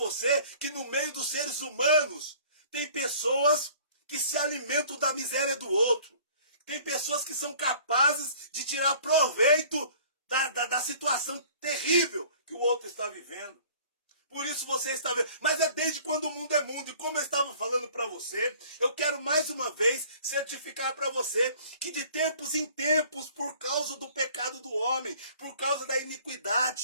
que no meio dos seres humanos tem pessoas que se alimentam da miséria do outro. Tem pessoas que são capazes de tirar proveito da situação terrível que o outro está vivendo. Por isso você está vendo. Mas é desde quando o mundo é mundo. E como eu estava falando para você, eu quero mais uma vez certificar para você que de tempos em tempos, por causa do pecado do homem, por causa da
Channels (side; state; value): both; inverted; correlation -0.51